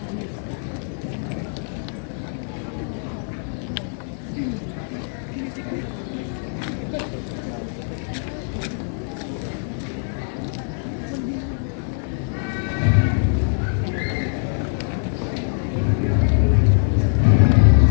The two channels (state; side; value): silent; right; 61 dB below the other